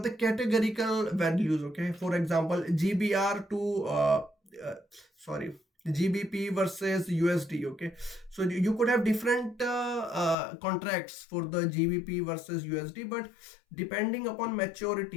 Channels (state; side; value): drops out; right; at 10.4 s